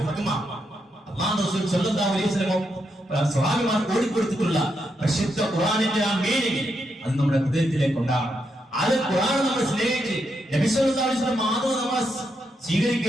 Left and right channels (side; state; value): both; normal; correlation 0.82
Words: സ്വഹാബിമാർ ഓടിക്കൊടുത്തിട്ടുള്ള പരിശുദ്ധ ഖുർആനിന്റെ ആ മീനിങ് അത് നമ്മുടെ ഹൃദയത്തിലേക്ക് ഉണ്ടാകണം. അത് ഖുർആൻ നമ്മൾ സ്നേഹിച്ച് നബി സല്ലല്ലാഹു അലൈഹി വസല്ലം മാതൃക നമ്മൾ